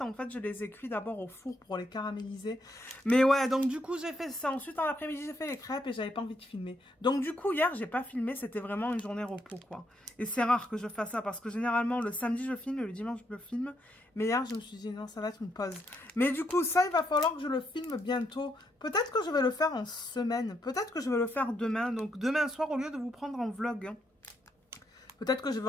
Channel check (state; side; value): normal; both; correlation 0.77